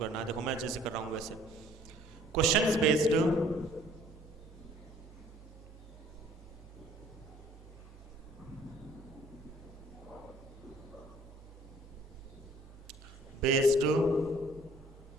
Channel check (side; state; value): both; normal; correlation 0.57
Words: है। देखो मैं जैसे कर रहा हूँ वैसे। Questions based